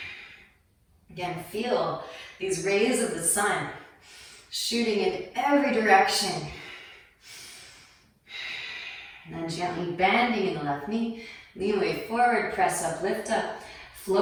Again, feel these rays of the sun shooting in every direction. And then gently bending in the left knee. Lean weight forward, press up, lift up.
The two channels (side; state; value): both; identical; correlation 1.00